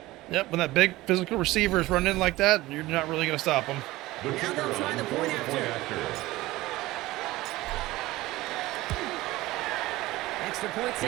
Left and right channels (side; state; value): left; quieter; 18.3 dB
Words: Yep, when that big physical receiver is running in like that, you're not really going to stop him. The Now they'll try the point after. Extra point